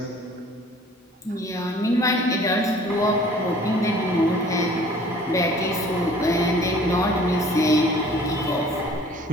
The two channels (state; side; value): normal; both; correlation 0.52